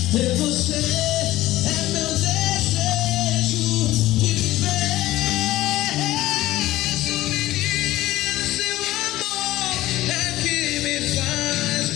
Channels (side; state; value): right; quieter; 16.3 dB